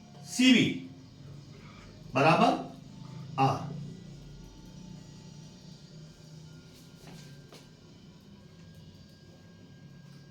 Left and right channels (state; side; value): identical; both; correlation 1.00